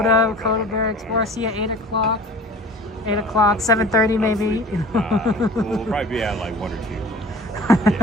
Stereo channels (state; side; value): normal; both; correlation 0.43